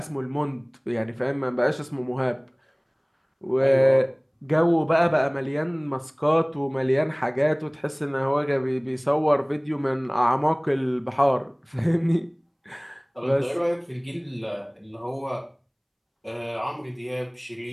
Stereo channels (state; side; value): identical; both; correlation 1.00